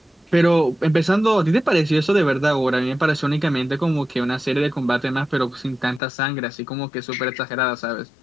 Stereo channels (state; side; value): drops out; right; at 6.0 s